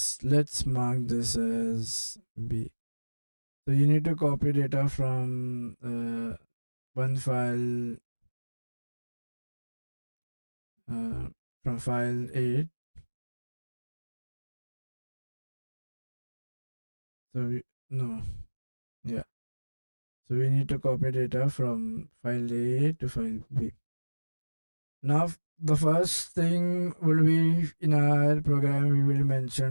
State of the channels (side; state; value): both; inverted; correlation -1.00